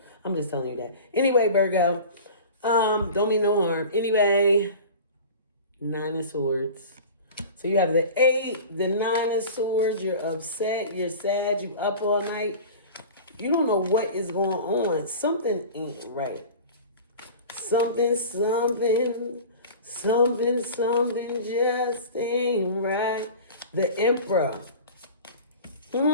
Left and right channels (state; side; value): inverted; both; correlation -0.37